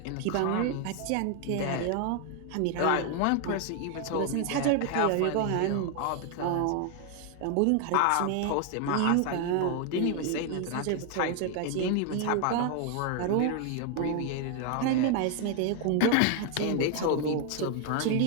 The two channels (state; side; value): different; both; correlation 0.01